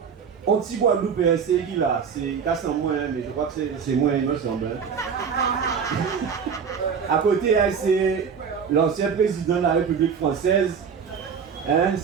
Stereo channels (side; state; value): left; quieter; 6.6 dB